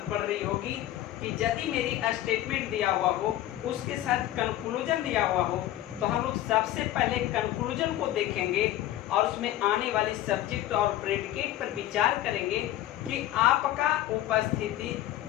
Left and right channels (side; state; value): right; quieter; 13.8 dB